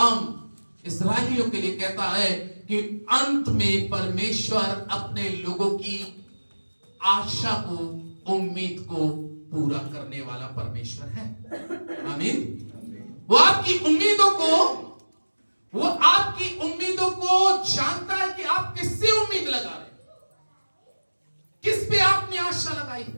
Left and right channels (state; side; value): inverted; both; correlation -1.00